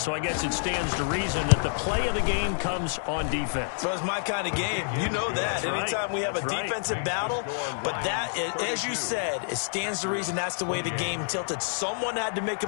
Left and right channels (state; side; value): silent; right; digital silence